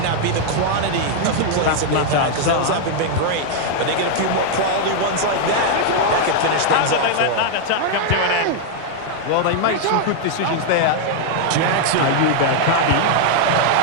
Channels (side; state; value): both; different; correlation 0.00